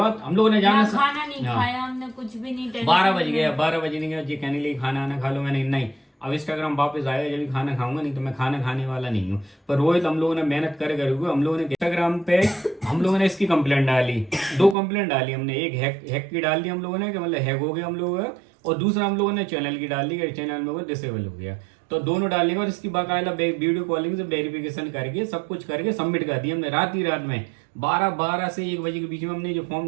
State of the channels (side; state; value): left; drops out; at 14.8 s